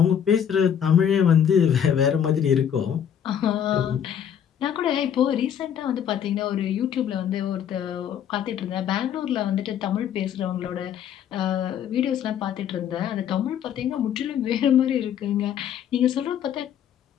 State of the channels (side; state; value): right; quieter; 9.0 dB